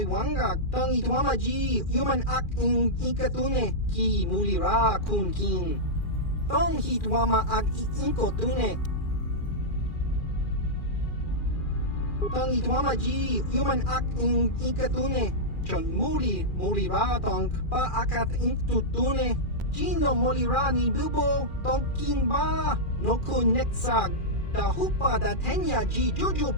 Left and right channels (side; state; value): right; late; 2.4 ms